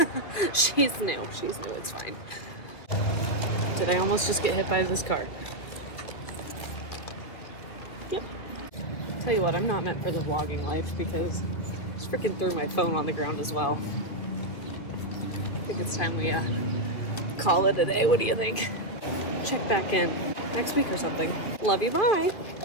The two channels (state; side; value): late; right; 2.3 ms